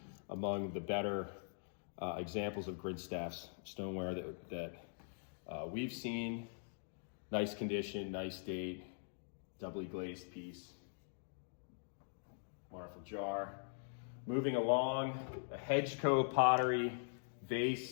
among the better examples of Grinstaff's stoneware that we've seen. Nice condition, nice date, doubly glazed piece. Wonderful jar. Moving along, a Hedgecoe pottery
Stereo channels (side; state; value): right; silent; digital silence